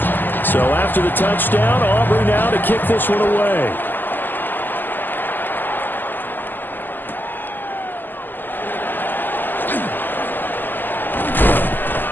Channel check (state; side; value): late; right; 0.090 ms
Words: So after the touchdown, Aubrey now to kick this one away.